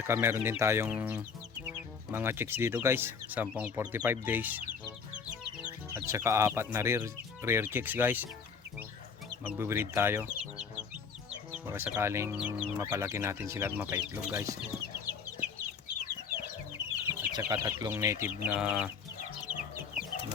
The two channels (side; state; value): right; quieter; 5.9 dB